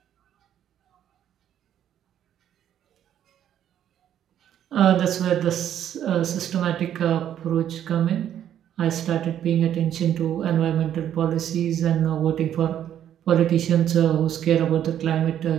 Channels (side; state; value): left; quieter; 10.5 dB